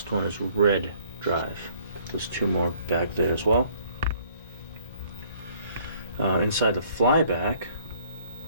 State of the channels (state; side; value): inverted; both; correlation -0.60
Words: one is red drive. There's 2 more back there as well. Inside the flyback,